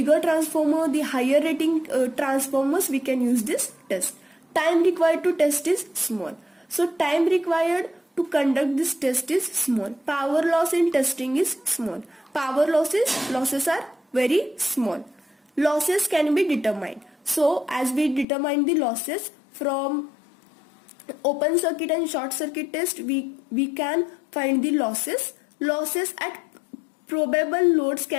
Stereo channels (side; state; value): right; drops out; at 18.2 s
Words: transformer, the higher rating transformers, we can use this test. Time required to test is small. So time required to conduct this test is small. Power loss in testing is small. Power losses are very small. Losses can be determined. So as we determine the losses from open circuit and short circuit test, we can find the losses. Losses at probable loads